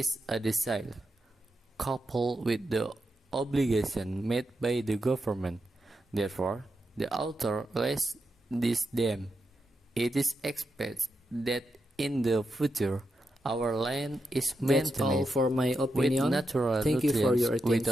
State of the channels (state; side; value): normal; both; correlation 0.86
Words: a desire, coupled with the obligation made by the government. Therefore, the author raised this dam. It is expected that in the future, our land is That's all maintained for my with opinion. natural Thank you for your nutrients